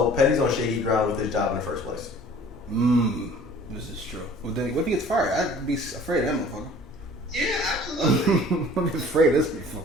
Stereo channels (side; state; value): both; normal; correlation 0.49